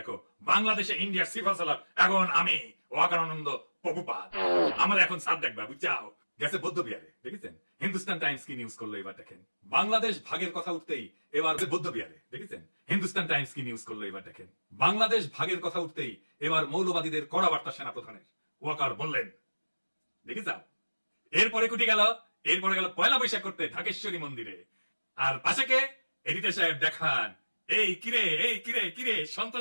বাংলাদেশে ইন্ডিয়ার সিফা সালার এখন আমি ওয়াকারানন্দ প্রভুপাদ। আমার এখন সাপ দেখবা, বুঝছাও? গেছে বৌদ্ধ বিহারে। দেখেছেন হিন্দুস্তান টাইমস কি নিউজ করলো এবার দেখেন। বাংলাদেশ ভাগের কথা উঠতেই এবার বৌদ্ধ বিহারে। দেখেছেন হিন্দুস্তান টাইমস কি নিউজ করলো এবার দেখেন। বাংলাদেশ ভাগের কথা উঠতেই এবার মৌলবাদীদের কড়া বার্তা সেনাপ্রধানের। ওয়াকার বললেন, দেখে যাও। এরপরে কুটি গেল, এরপরে গেল পয়লা বৈশাখ করতে ঢাকেশ্বরী মন্দিরে। আর পাশে কে? এডিটর সাহেব দেখান, এই কিরে এই কিরে কিরে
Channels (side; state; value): both; inverted; correlation -1.00